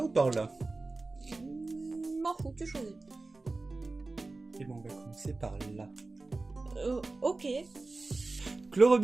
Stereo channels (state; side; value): quieter; left; 3.4 dB